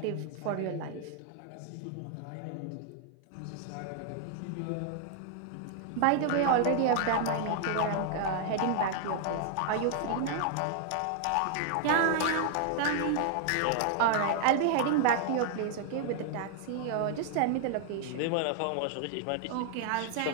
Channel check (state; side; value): different; both; correlation 0.00